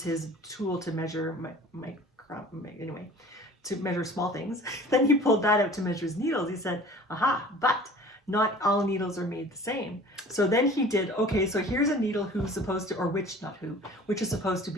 his tool to measure anyway, to measure small things. Then he pulled that out to measure his needles. He said, aha, but not all needles are made the same. So then he did, okay, so here's a needle who's supposed to, or which, not who, which is supposed to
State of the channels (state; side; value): normal; both; correlation 0.45